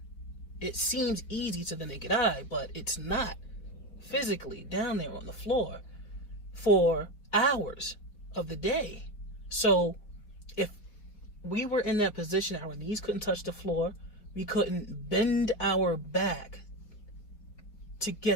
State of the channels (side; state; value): right; late; 4.6 ms